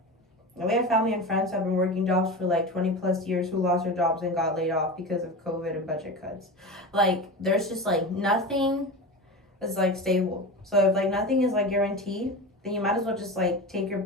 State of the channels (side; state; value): both; normal; correlation 0.27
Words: And we have family and friends who have been working jobs for, like, 20 plus years who lost their jobs and got laid off because of COVID and budget cuts. Like, there's just, like, nothing is, like, stable. So if, like, nothing is, like, guaranteed, then you might as well just, like, take your